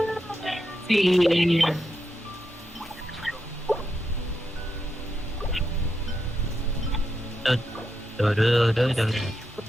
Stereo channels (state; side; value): normal; both; correlation 0.84